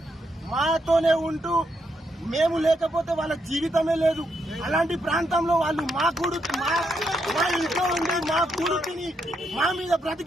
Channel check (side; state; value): both; normal; correlation 0.79